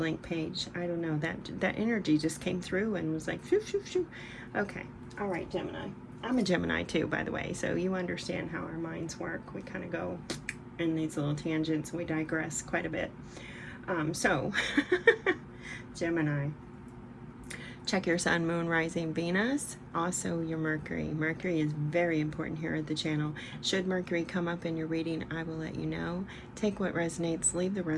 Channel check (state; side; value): identical; both; correlation 1.00